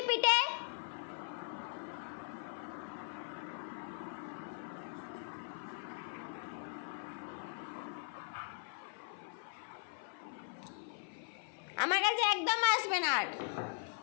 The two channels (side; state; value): right; silent; 51 dB below the other